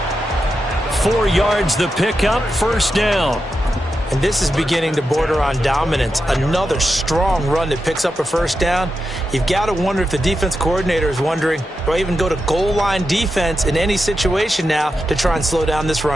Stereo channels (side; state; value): both; normal; correlation 0.88